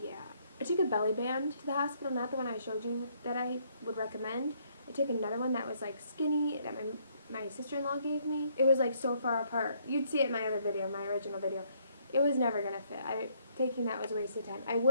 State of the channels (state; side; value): inverted; both; correlation -0.68